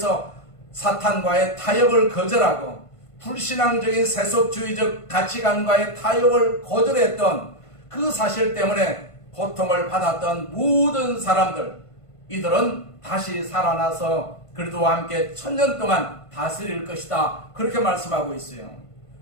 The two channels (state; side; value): late; right; 1.5 ms